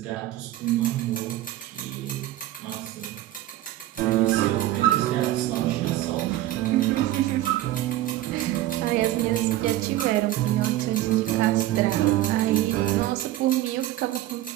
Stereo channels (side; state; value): left; quieter; 14.7 dB